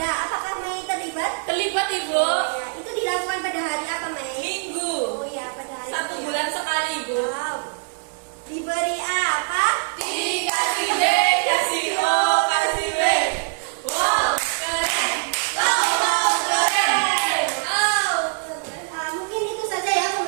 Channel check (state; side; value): silent; left; digital silence